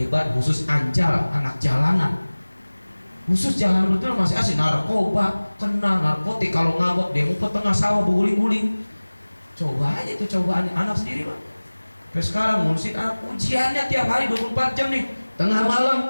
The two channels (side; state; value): both; inverted; correlation -1.00